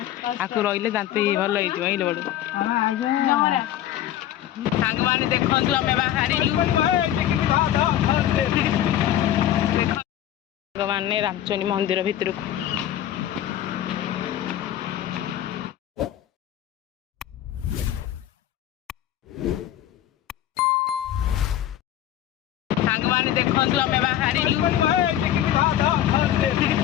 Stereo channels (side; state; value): right; quieter; 11.9 dB